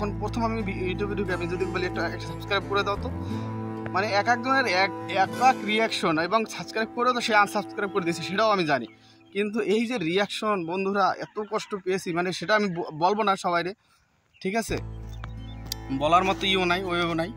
প্রথম আমি ইউটিউবে ঢুকে আমি যদি বলি একটা সাবস্ক্রাইব করে দাও, তো মানে এক একজনের এক রিয়াকশন, এবং সাবস্ক্রাইব করেও তো সে আনসাবস্ক্রাইব করে দিয়েছে, সেটাও আমি জানি। কিন্তু এই যে রিয়াকশন বন্ধুরা, এত কষ্ট পেয়েছি, মানে সেটা আমি বলবো না সবাইরে, ঠিক আছে। বলার মতো ইও নাই, ওইও নাই।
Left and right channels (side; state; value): both; identical; correlation 1.00